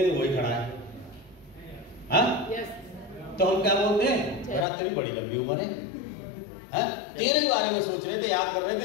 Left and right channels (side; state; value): right; drops out; at 4.7 s